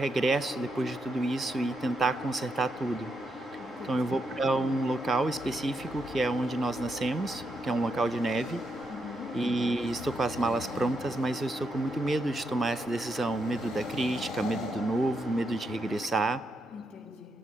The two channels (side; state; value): both; normal; correlation 0.81